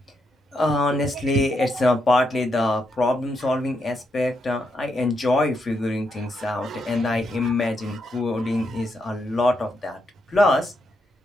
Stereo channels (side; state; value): both; normal; correlation 0.81